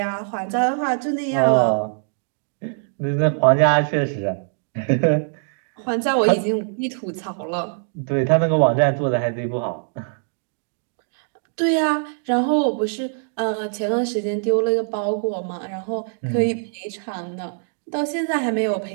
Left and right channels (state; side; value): silent; left; digital silence